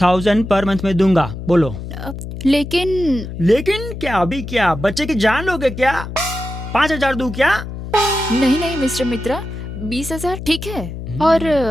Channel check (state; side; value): noise; left; hum, 9 dB below the sound